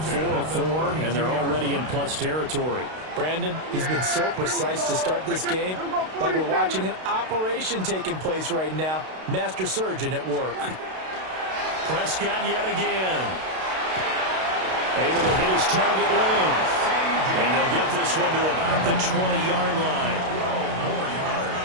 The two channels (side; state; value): left; late; 32 ms